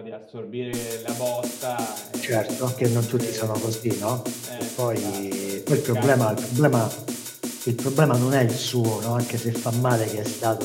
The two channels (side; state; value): both; identical; correlation 1.00